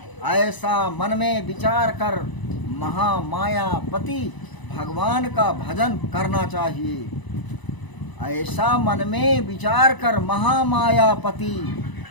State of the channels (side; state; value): right; late; 1.0 ms